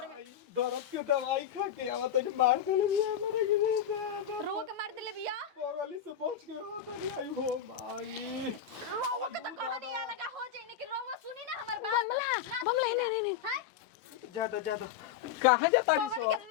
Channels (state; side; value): quieter; right; 8.8 dB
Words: में दर्द के दवाई खा के आवत है मार देले बिया हमरा के दादा रो के मार देले बिया बगली से बच के रहत नहीं आई हो माई रोवा के तो कहानी आ लगा हो जाई कि रोवा सुनी ना हमर बात ना सुनी ना हैं ज्यादा कहां जाता पगली के